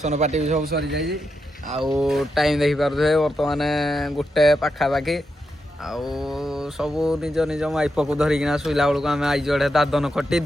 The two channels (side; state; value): both; normal; correlation 0.85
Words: ପାର୍ଟି ବି ସବୁ ସରି ଯାଇଛି ଆଉ ଟାଇମ୍ ଦେଖିପାରୁଥିବେ ବର୍ତ୍ତମାନ 1 ପାଖାପାଖି ଆଉ ସବୁ ନିଜ ନିଜ ମାଇପକୁ ଧରିକିନା ଶୋଇଲା ବେଳକୁ ଆମେ ଆଇଛୁ ଏଠି